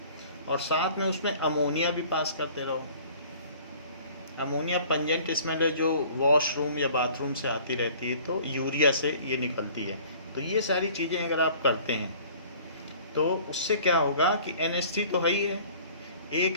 और साथ में उसमें अमोनिया भी पास करते रहो। अमोनिया पंजेंट स्मेल है जो वॉशरूम या बाथरूम से आती रहती है, तो यूरिया से ये निकलती है। तो ये सारी चीज़ें अगर आप करते हैं तो उससे क्या होगा कि NH3 तो है ही है,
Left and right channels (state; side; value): inverted; both; correlation -0.50